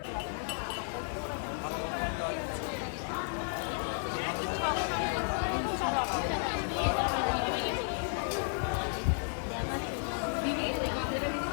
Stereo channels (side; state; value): right; silent; 56 dB below the other